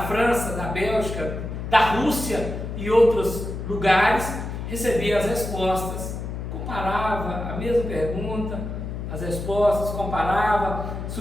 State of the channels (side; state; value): left; noise; hum, 6 dB below the sound